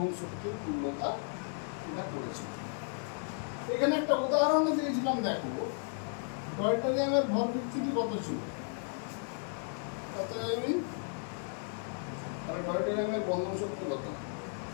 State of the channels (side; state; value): right; silent; 55 dB below the other